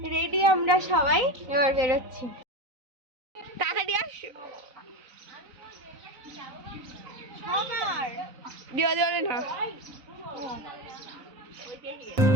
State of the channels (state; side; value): late; left; 3.9 ms